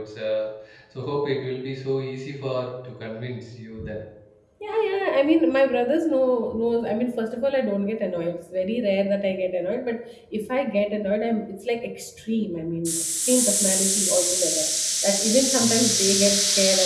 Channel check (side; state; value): both; identical; correlation 1.00